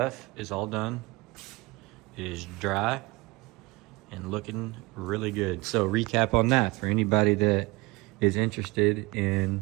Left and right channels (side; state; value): left; quieter; 23.6 dB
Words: is all done. It is dry and looking really good. So recap on that for anybody that is interested in